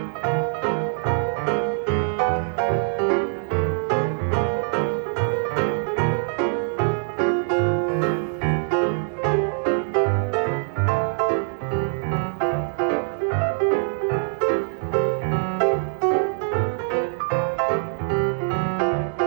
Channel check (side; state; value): left; silent; digital silence